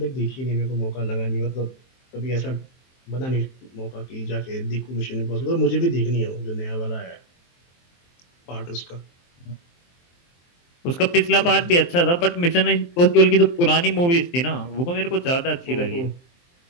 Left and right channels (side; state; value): right; late; 23 ms